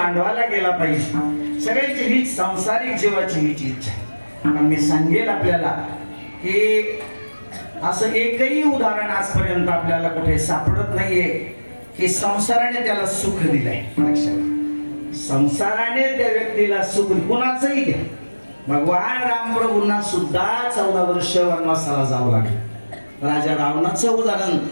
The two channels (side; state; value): both; inverted; correlation -1.00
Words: गेला पाहिजे. सगळ्यांची हीच सांसारिक जीवाची हीच इच्छा आहे. आणि मी सांगेल आपल्याला की असं एकही उदाहरण आजपर्यंत आपल्याला कुठे सापडत नाहीये की संसाराने त्याला सुख दिलंय. लक्षात, संसाराने त्या व्यक्तीला सुख कुणाचंही घ्या. भगवान रामप्रभूंना सुद्धा 14 वर्ष वनवासाला जावं लागलं. राजा रावणाचं उदाहरण,